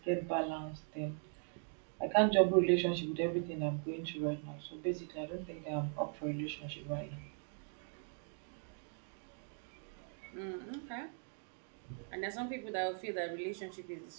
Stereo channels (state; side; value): silent; left; 51 dB below the other